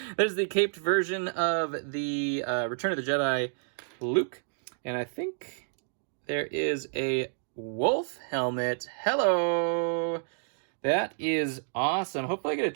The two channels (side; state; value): left; silent; digital silence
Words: There's the caped version of the Return of the Jedi Luke. And I think there is a wolf helmet. Hello! That is awesome. Hopefully I get a